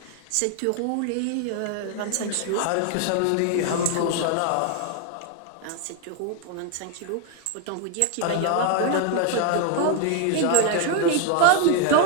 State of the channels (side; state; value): both; different; correlation 0.00